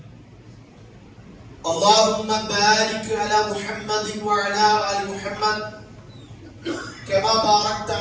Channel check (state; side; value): identical; both; correlation 1.00